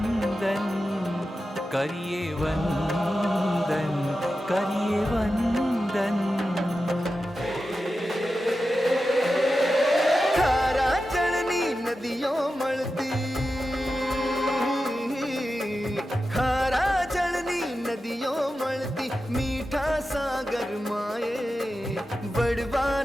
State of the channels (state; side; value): normal; both; correlation 0.92